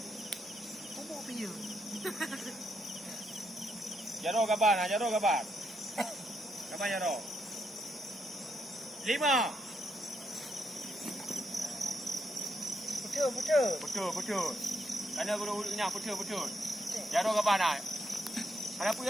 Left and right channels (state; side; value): normal; both; correlation 0.79